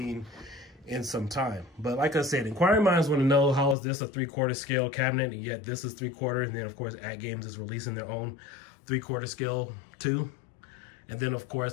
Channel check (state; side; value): drops out; right; at 3.8 s